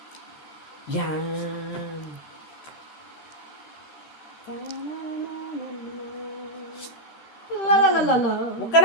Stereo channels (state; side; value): late; right; 13 ms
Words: Yan. La la la la la. Huwag ka